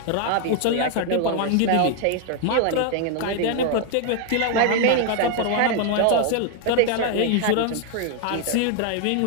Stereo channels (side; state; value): both; different; correlation 0.00